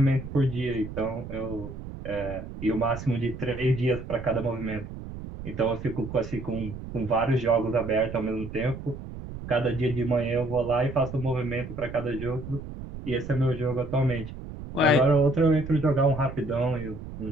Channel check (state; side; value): noise; right; rumble, 10 dB below the sound